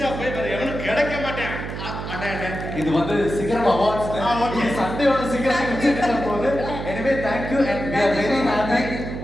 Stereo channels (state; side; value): noise; right; hum, 7 dB below the sound